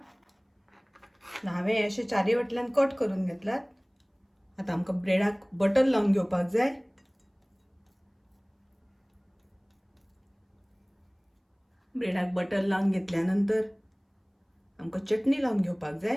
हांवें अशें चारय वाटल्यान कट करून घेतलात। आतां आमकां ब्रेडाक बटर लावन घेवपाक जाय। ब्रेडाक बटर लावन घेतल्या नंतर आमकां चटणी लावन घेवपाक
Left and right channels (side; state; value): both; identical; correlation 1.00